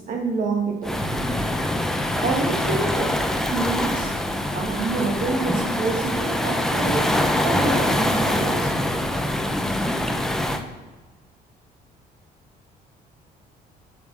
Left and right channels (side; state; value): both; normal; correlation 0.72